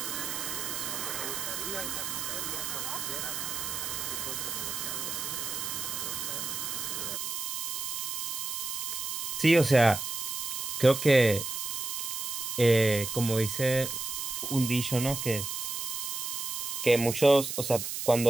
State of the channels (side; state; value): right; noise; hiss, 3 dB below the sound